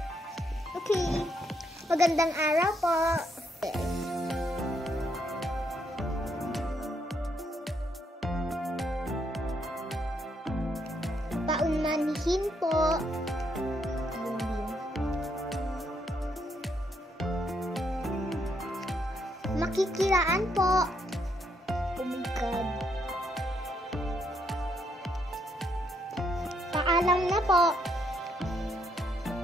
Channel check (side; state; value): both; normal; correlation 0.75